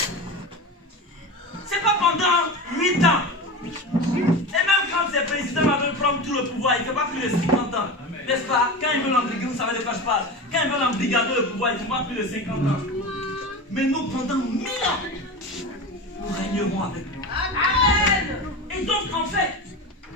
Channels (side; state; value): both; normal; correlation 0.26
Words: C'est pas pendant 8 ans. Et même quand ces présidents veulent prendre tout le pouvoir, il ne fait pas plus de 50 ans. N'est-ce pas? Quand ils veulent embrigader, vous savez de quoi je parle. Quand ils veulent embrigader le pouvoir, il ne fait pas plus de 50 ans. Mais nous, pendant 1000 ans, nous régnerons avec lui. Amen. Et donc, en fait,